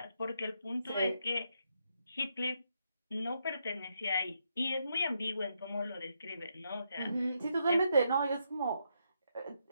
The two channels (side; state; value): both; inverted; correlation -0.79